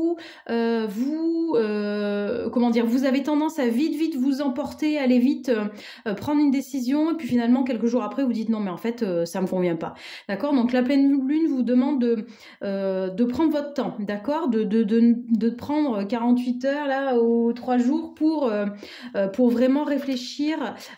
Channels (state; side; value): identical; both; correlation 1.00